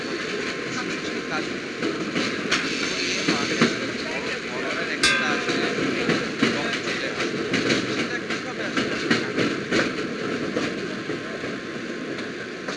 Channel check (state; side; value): identical; both; correlation 1.00